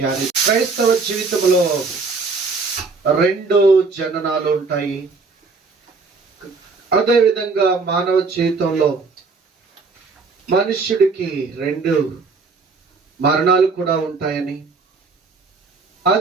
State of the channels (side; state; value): left; quieter; 4.3 dB